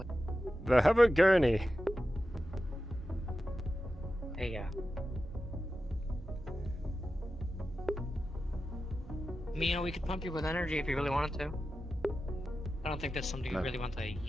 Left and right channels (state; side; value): normal; both; correlation 0.92